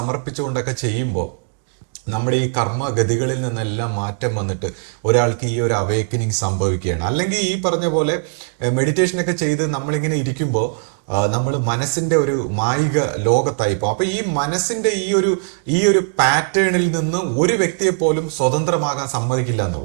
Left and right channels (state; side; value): silent; left; digital silence